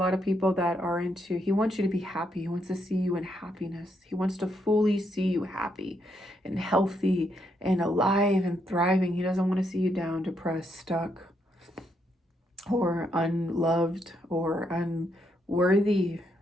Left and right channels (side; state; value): both; normal; correlation 0.77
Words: of people that are into, he wants you to be happy. He wants to see you in happiness. He wants to fully see you happy and healthy and alive and thriving. He doesn't want to see you down, depressed, stuck, or unloved or unworthy.